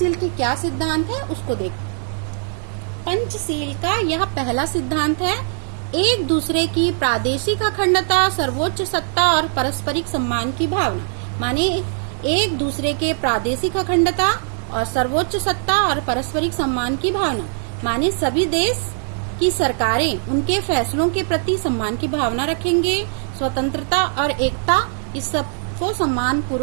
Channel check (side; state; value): left; silent; digital silence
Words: के क्या सिद्धांत है उसको देखो। पंचशील का यह पहला सिद्धांत है, एक दूसरे की प्रादेशिक अखंडता, सर्वोच्च सत्ता और पारस्परिक सम्मान की भावना। माने एक दूसरे के प्रादेशिक अखंडता और सर्वोच्च सत्ता और पारस्परिक सम्मान की भावना, माने सभी देश की सरकारें उनके फैसलों के प्रति सम्मान की भावना रखेंगे, स्वतंत्रता और एकता इस सब को सम्मान